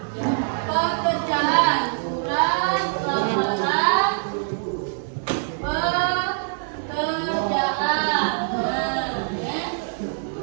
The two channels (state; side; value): silent; left; digital silence